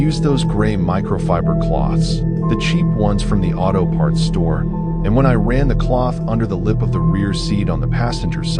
those gray microfiber cloths, the cheap ones from the auto parts store, and when I ran the cloth under the lip of the rear seat on the passenger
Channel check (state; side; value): identical; both; correlation 1.00